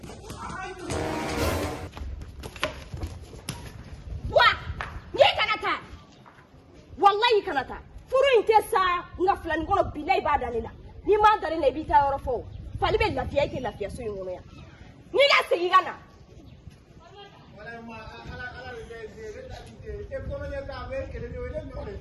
Wallahi kanata furu inte sa nga fulani ngono bilay ba dalila ni ma dalila bi ta yoro fo fali be lafiya ke lafiya so ngono ya ni ga sigi gana Wala ma ala de da de e ko nya ta be ke de wele no de.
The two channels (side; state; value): both; identical; correlation 1.00